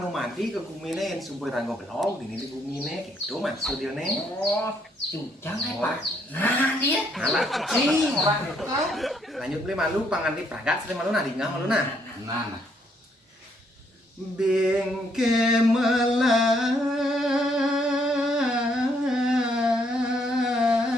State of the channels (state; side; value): normal; both; correlation 0.71